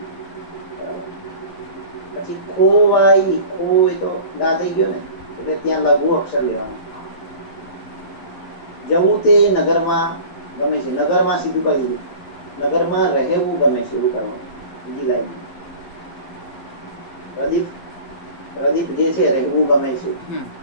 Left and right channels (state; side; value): late; right; 11 ms